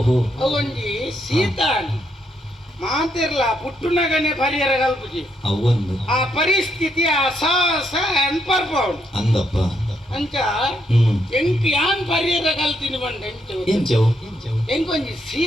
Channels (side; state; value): both; normal; correlation 0.76